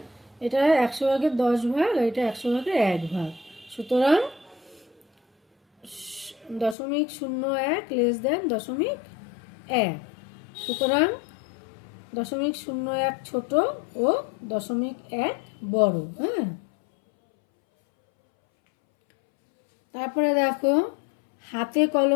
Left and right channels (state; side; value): drops out; right; at 6.8 s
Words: এটা 100/10 আর এটা 100/1 সুতরাং 0.01 লেস দেন 0.1। সুতরাং 0.01 ছোট ও 0.1 বড়। হ্যাঁ, তারপরে দেখো হাতে